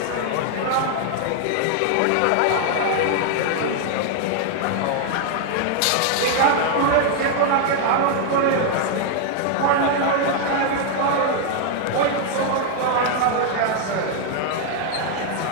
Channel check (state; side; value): different; both; correlation 0.00